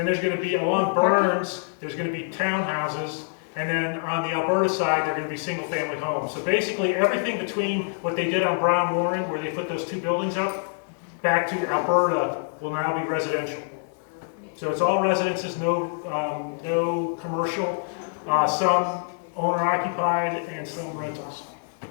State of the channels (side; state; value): right; silent; digital silence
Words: there's gonna be, along Burns, there's gonna be townhouses, and then on the Alberta side, they're gonna be single-family homes. So basically, everything between what they did on Brown Warren, where they put those 2 buildings up, back to Alberta will now be residential. So it's all residences, no commercial, some owner occupied and some rentals.